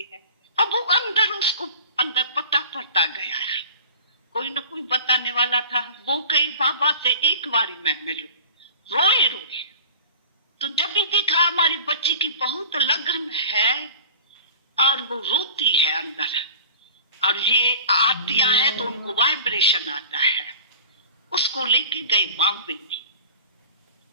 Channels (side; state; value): both; inverted; correlation -0.40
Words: हैं। अब वो अंदर, उसको अंदर पता पड़ता गया, कोई न कोई बताने वाला था। वो कही बाबा से एक बारी मैं मिलूं, रोए। तो जब भी देखा हमारी बच्ची की बहुत लगन है और वो रोती है अंदर, और ये आतियां है तो उनको वाइब्रेशन आता है, उसको लेके गए बॉम्बे में।